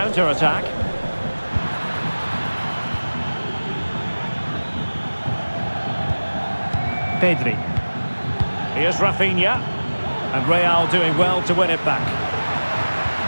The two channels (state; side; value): inverted; both; correlation -1.00